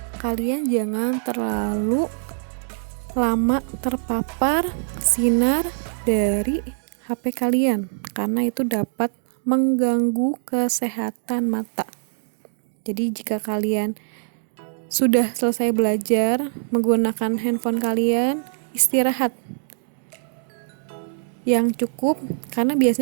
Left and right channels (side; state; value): left; silent; digital silence